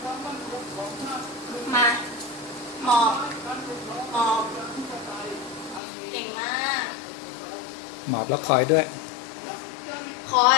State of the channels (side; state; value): right; drops out; at 5.8 s